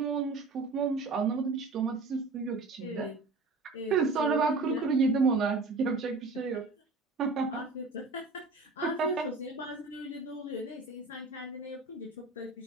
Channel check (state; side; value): quieter; left; 3.7 dB